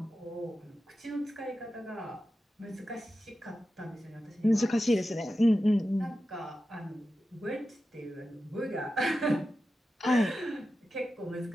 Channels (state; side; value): normal; both; correlation 0.92